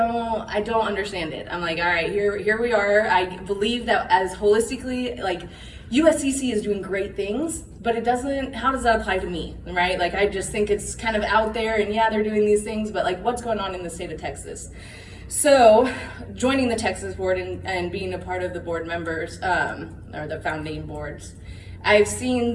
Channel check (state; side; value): identical; both; correlation 1.00